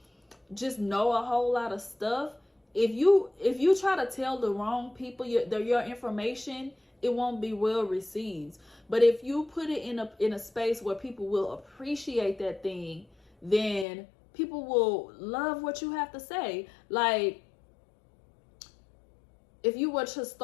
just know a whole lot of stuff. If you try to tell the wrong people your information, it won't be well received. But if you put it in a space where people will appreciate that thing, then people will love what you have to say. Like, if you were to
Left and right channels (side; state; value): right; drops out; at 13.9 s